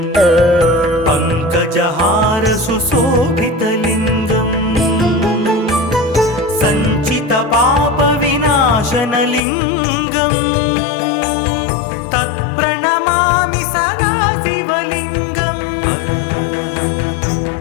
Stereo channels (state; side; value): drops out; right; at 9.4 s